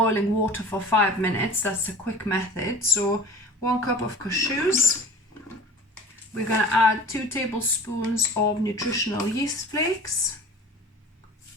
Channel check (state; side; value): normal; both; correlation 0.42